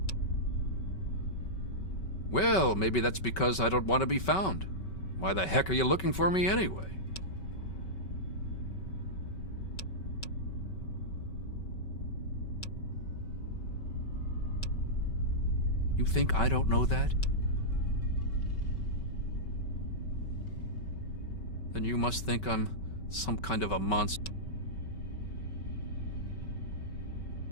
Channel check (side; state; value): right; late; 5.3 ms